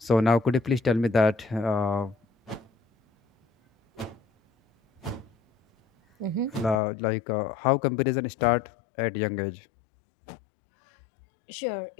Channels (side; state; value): right; drops out; at 6.8 s